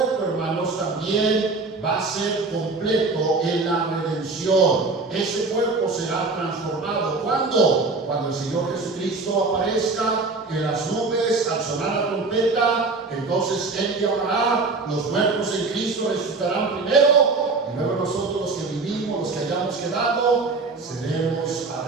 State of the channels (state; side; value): quieter; left; 3.8 dB